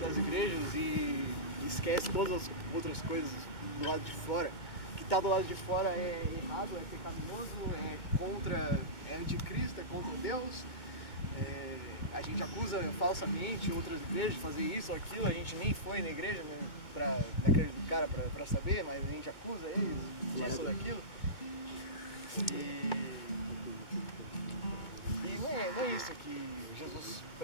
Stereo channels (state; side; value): late; right; 2.2 ms